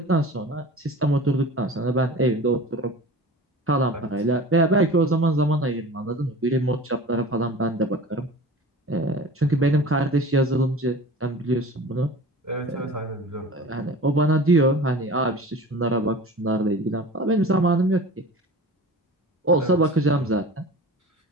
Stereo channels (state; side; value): normal; both; correlation 0.38